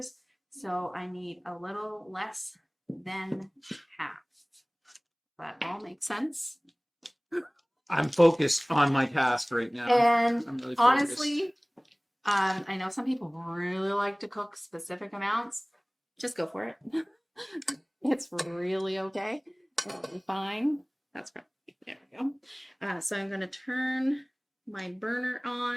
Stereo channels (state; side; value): identical; both; correlation 1.00